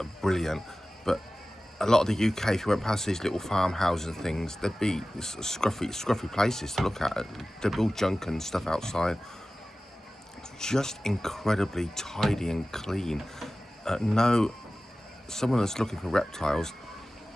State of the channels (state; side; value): normal; both; correlation 0.96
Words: brilliant, but a lot of the UK, if you went past these little farmhouses and things, there'd be scruffy places to look at. There'd be all junk and stuff outside. Just incredibly tidy and clean. Someone that's looking for reptiles,